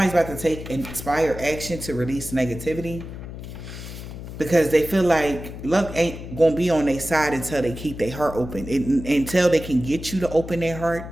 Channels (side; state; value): left; noise; hum, 11 dB below the sound